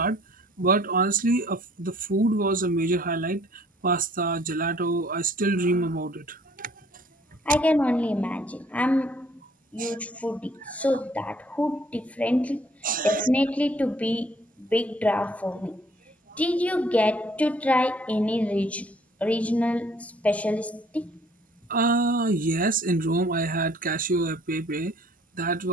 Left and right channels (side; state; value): both; normal; correlation 0.59